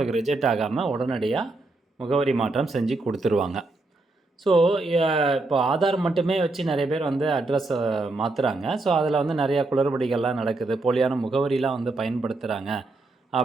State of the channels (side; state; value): left; quieter; 3.1 dB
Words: ரிஜெக்ட் ஆகாமல் உடனடியாக முகவரி மாற்றம் செஞ்சு கொடுத்துருவாங்க. ஸோ இப்போ ஆதார் மட்டுமே வச்சு நிறைய பேர் அட்ரஸை மாற்றுறாங்க. ஸோ அதில் நிறையா குளறுபடிகள்லாம் நடக்குது, போலியான முகவரிலாம் பயன்படுத்துகிறாங்க